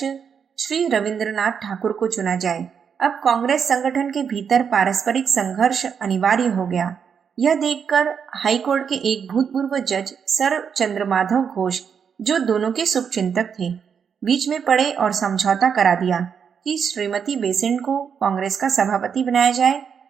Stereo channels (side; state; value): left; quieter; 7.0 dB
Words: श्री रविंद्रनाथ ठाकुर को चुना जाए। अब कांग्रेस संगठन के भीतर पारस्परिक संघर्ष अनिवार्य हो गया। यह देखकर हाईकोर्ट के एक भूतपूर्व जज सर चंद्रमाधव घोष, जो दोनों के शुभचिंतक थे, बीच में पड़े और समझौता करा दिया कि श्रीमती बेसेंट को कांग्रेस का सभापति बनाया जाए